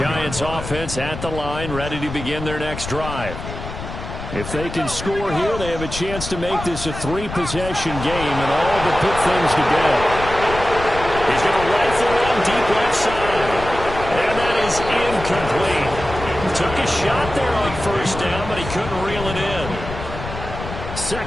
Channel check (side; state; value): left; noise; rumble, 9 dB below the sound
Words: offense at the line, ready to begin their next drive. If they can score here, they have a chance to make this a 3-possession game and all but put things to bed. He's going to rifle in deep left side. And that is incomplete. Took a shot there on 1st down, but he couldn't reel it in.